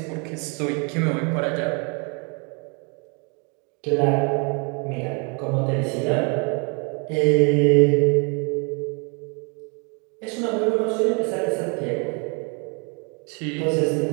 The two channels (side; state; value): left; quieter; 34.4 dB